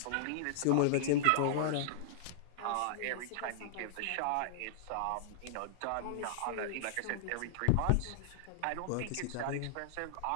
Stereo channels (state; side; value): different; both; correlation -0.01